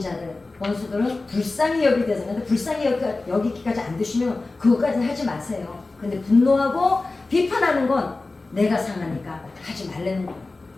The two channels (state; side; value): quieter; right; 3.4 dB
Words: 원수들은 불쌍히 여기게 되는데 불쌍히 여기기까지 안 되시면 그것까지는 하지 마세요. 근데 분노하고 비판하는 건 내가 상하니까 하지 말라는 거예요.